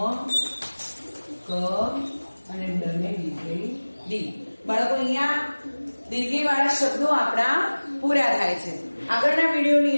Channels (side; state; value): both; inverted; correlation -1.00